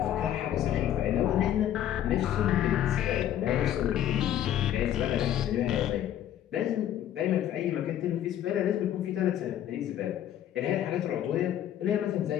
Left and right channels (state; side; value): quieter; right; 11.2 dB